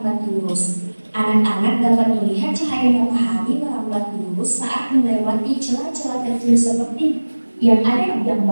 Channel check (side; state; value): both; inverted; correlation -1.00